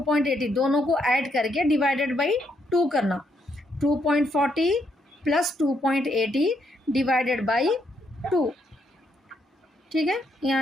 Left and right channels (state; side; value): normal; both; correlation 0.75